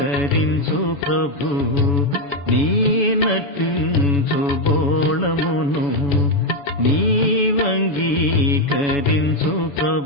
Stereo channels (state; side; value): late; right; 7.1 ms